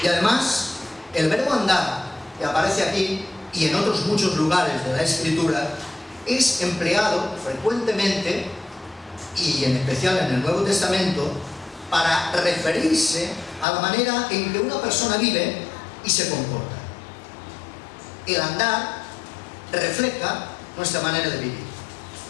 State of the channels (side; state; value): right; drops out; at 13.7 s